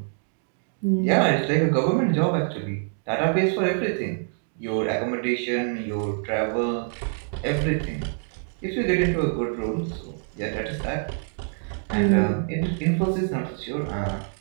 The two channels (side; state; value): left; silent; 58 dB below the other